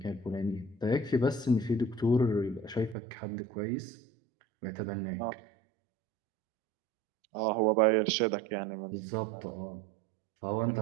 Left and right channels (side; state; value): left; drops out; at 3.0 s